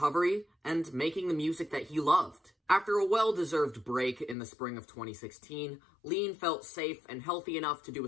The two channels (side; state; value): right; drops out; at 4.4 s